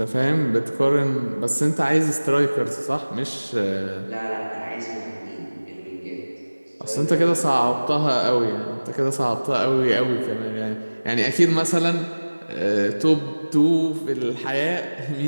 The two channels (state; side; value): inverted; both; correlation -1.00